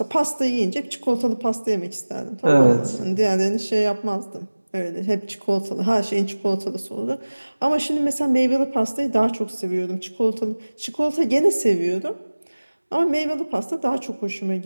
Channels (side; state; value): both; inverted; correlation -1.00